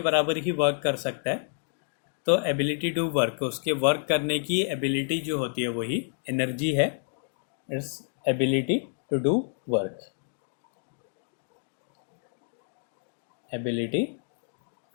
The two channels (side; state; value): right; silent; digital silence